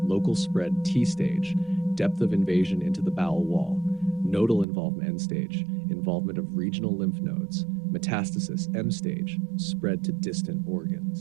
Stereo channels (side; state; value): left; drops out; at 4.7 s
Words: local spread T stage, depth of invasion into the bowel wall, nodal involvement N stage, involvement of regional lymph nodes, metastasis M stage, spread to distant